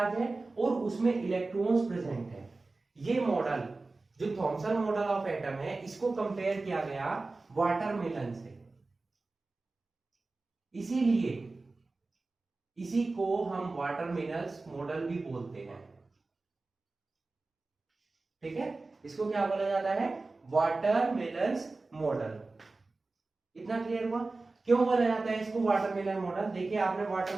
है और उसमें इलेक्ट्रॉन्स प्रेजेंट है। ये मॉडल जो थॉमसन मॉडल ऑफ एटम है, इसको कंपेयर किया गया वाटरमेलन से। इसीलिए इसी को हम वाटरमेलन्स मॉडल भी बोलते हैं। ठीक है, इसको क्या बोला जाता है, वाटरमेलन्स मॉडल। इतना क्लियर हुआ, क्यों बोला जाता है इसको वाटरमेलन मॉडल। देखिए, आपने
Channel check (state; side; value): quieter; left; 3.5 dB